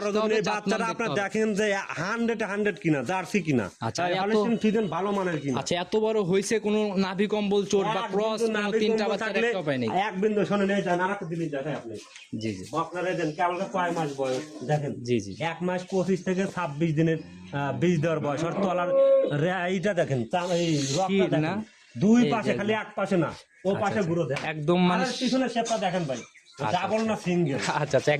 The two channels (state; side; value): identical; both; correlation 1.00